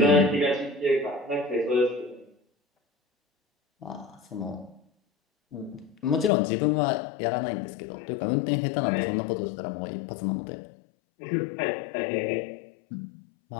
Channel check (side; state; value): right; drops out; at 6.3 s